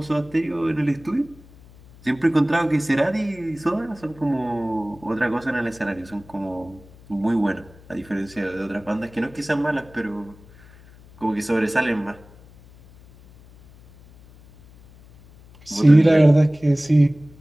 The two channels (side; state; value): left; noise; hum, 24 dB below the sound